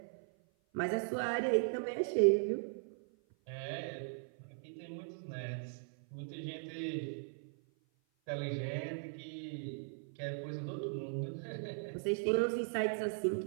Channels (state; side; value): silent; left; 52 dB below the other